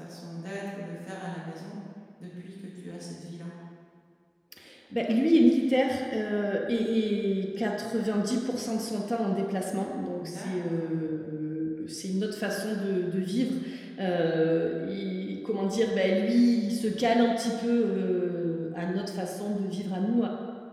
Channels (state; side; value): identical; both; correlation 1.00